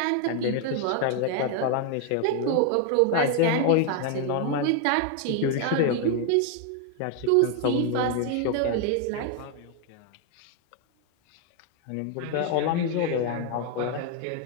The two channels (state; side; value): different; both; correlation 0.01